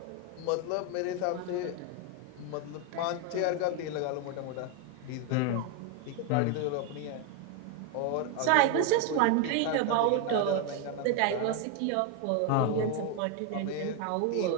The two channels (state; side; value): different; both; correlation 0.01